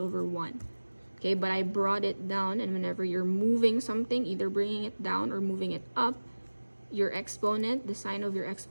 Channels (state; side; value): inverted; both; correlation -1.00